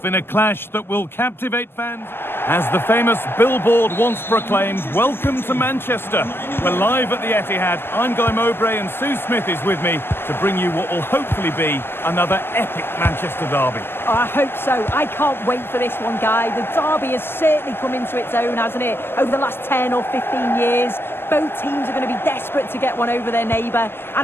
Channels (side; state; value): right; late; 0.11 ms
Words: in a clash that will captivate fans. As the famous billboard once proclaimed, welcome to Manchester. We're live at the Etihad. I'm Guy Mowbray and Sue Smith is with me to bring you what will hopefully be another epic Manchester derby. Oh, I hope so. I can't wait for this one, Guy. The derby has certainly come into its own, hasn't it? Over the last 10 or 15 years. Both teams are going to be desperate to get one over their neighbour. And